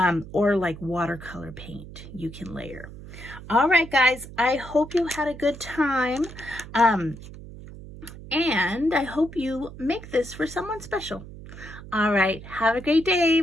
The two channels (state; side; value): noise; right; hum, 15 dB below the sound